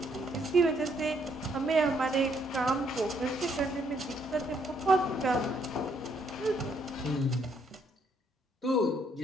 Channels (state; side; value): normal; both; correlation 0.70